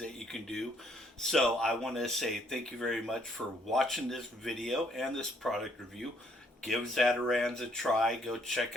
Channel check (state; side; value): normal; both; correlation 0.68